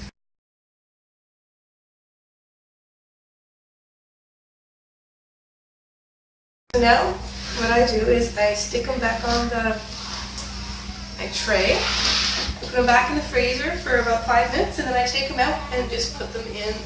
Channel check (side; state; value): both; identical; correlation 1.00